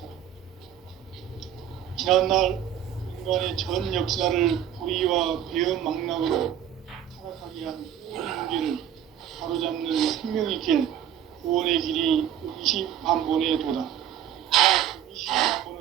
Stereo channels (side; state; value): left; quieter; 10.2 dB